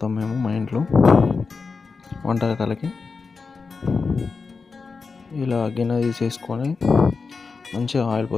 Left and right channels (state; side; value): quieter; right; 4.7 dB